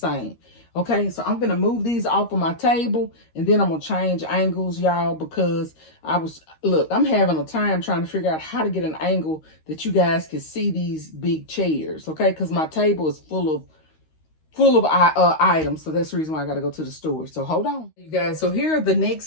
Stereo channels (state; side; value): late; right; 13 ms